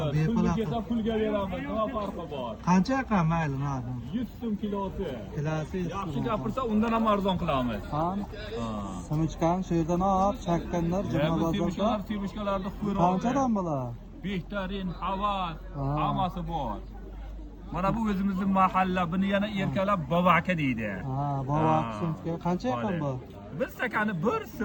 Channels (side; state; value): both; identical; correlation 1.00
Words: Pulga kelsa pulga beramiz. Nima farqi bor? Qancha ekan mayli, nima? 100 so'm kilosi. Kilosi 100 Yaxshi so'm. gapirsa undan ham arzon qilamiz. Ha? Simichkan shu yerdan olib, chakkanlar juma bozorda. Sevishkalarni qo'yib. Qanchadan bular? Behtarin, havas, Ha. hammasi bor. Mana bu o'zimizning mahalla, buni yana erkalab bovaka deydi. Ha, bovak sumka. Qancha ekan bu? Bir stakani 1